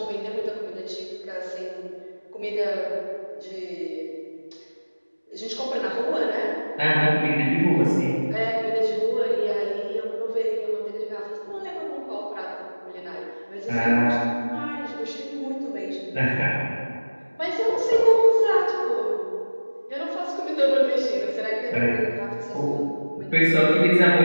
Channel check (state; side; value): inverted; both; correlation -1.00